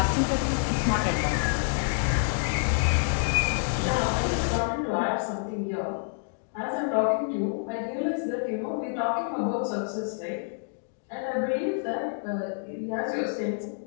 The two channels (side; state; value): right; silent; digital silence